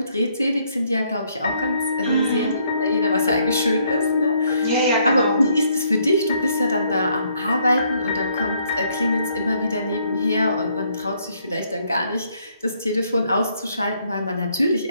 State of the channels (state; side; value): inverted; both; correlation -0.70